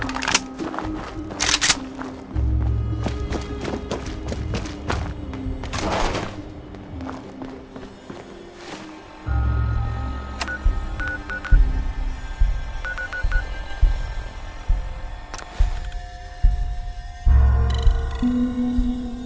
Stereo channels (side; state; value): both; identical; correlation 1.00